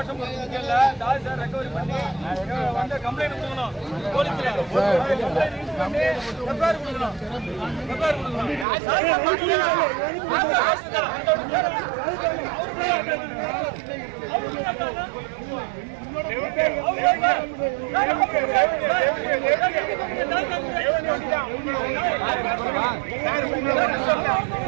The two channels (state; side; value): drops out; left; at 8.7 s